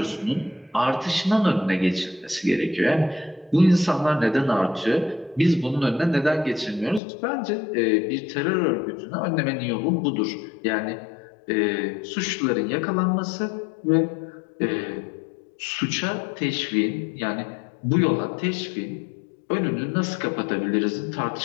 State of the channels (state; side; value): drops out; right; at 7.0 s